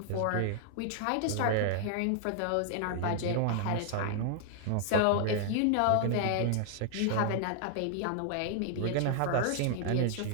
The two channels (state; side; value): different; both; correlation 0.00